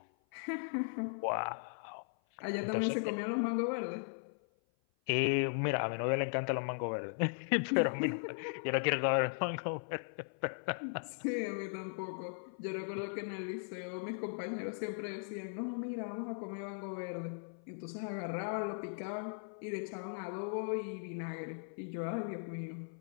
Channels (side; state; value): right; silent; 52 dB below the other